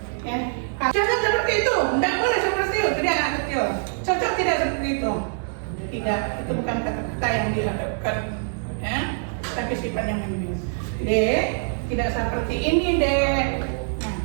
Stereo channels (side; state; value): left; silent; digital silence